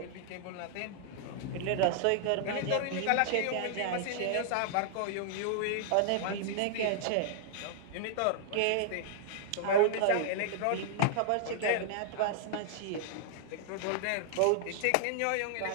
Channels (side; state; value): both; different; correlation -0.01